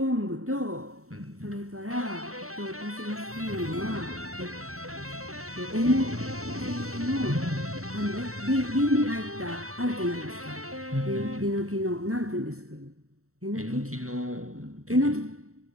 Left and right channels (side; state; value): left; late; 0.64 ms